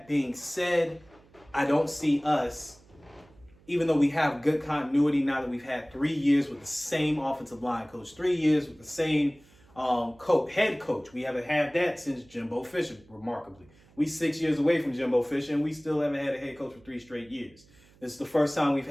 being said, I don't see us, even though we have good continuity now that we've had 3 years with the same offensive line coach, 3 years with the same head coach. We haven't had that since Jimbo Fisher, remarkably. We 6 years away from Jimbo Fisher, and we still haven't had a head coach for 3 straight years. This is the first time we've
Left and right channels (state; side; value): noise; right; hum, 28 dB below the sound